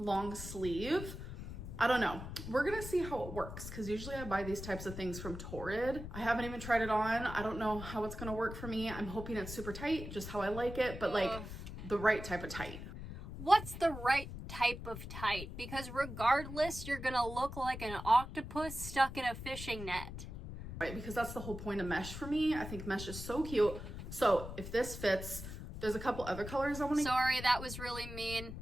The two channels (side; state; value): left; noise; rumble, 9 dB below the sound